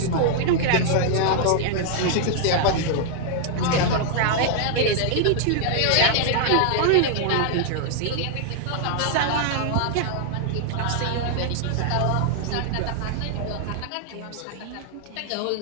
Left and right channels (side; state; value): both; different; correlation -0.01